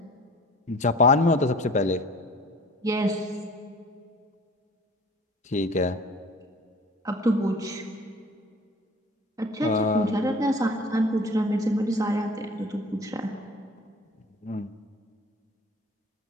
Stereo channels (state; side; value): normal; both; correlation 0.46